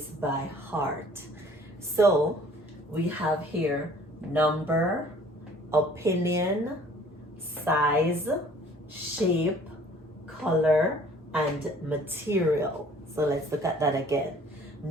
by heart. So we have here number, opinion, size, shape, color, and material. So let's look at that again.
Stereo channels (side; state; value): both; normal; correlation 0.53